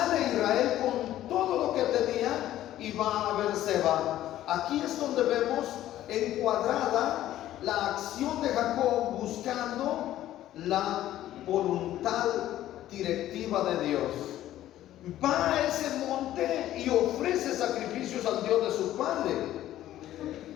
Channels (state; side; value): quieter; right; 13.4 dB